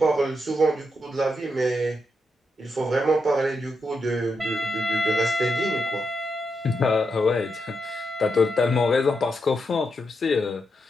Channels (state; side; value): normal; both; correlation 0.83